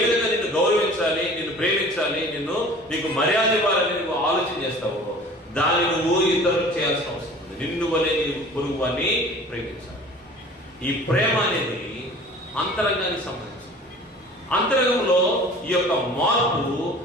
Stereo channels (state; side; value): normal; both; correlation 0.45